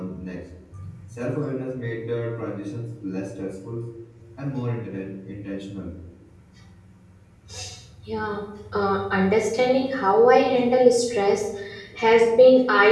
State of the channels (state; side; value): identical; both; correlation 1.00